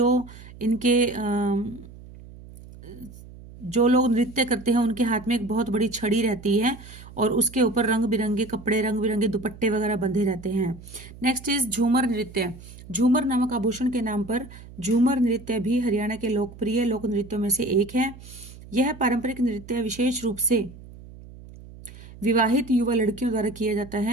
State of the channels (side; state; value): right; noise; hum, 18 dB below the sound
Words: जो लोग नृत्य करते हैं उनके हाथ में एक बहुत बड़ी छड़ी रहती है और उसके ऊपर रंग बिरंगे कपड़े, रंग बिरंगे दुपट्टे वगैरह बंधे रहते हैं। नेक्स्ट इज झूमर नृत्य। झूमर नामक आभूषण के नाम पर झूमर नृत्य भी हरियाणा के लोकप्रिय लोक नृत्यों में से एक है। यह पारंपरिक नृत्य विशेष रूप से विवाहित युवा लड़कियों द्वारा किया जाता